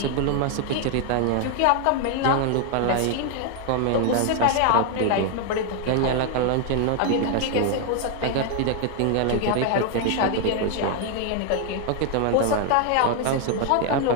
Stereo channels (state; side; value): different; both; correlation 0.00